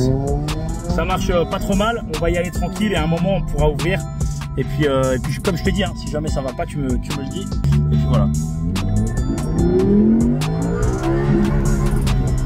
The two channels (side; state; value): both; identical; correlation 1.00